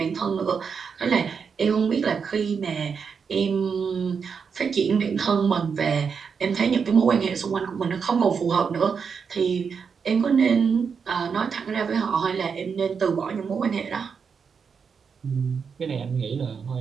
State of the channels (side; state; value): left; quieter; 6.1 dB